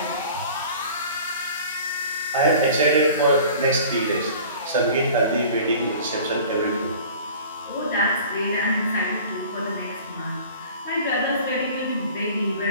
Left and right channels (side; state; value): both; inverted; correlation -0.44